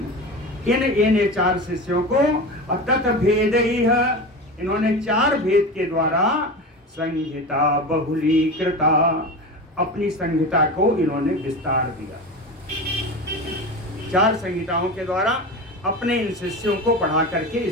इन 4 शिष्यों को तत् भेदैः, इन्होंने 4 भेद के द्वारा संहिता बहुलीकृता, अपनी संहिता को इन्होंने विस्तार दिया। 4 संहिताओं के द्वारा अपने इन शिष्यों को पढ़ा करके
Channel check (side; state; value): both; normal; correlation 0.27